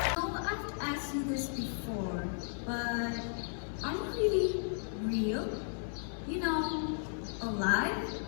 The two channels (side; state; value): right; silent; digital silence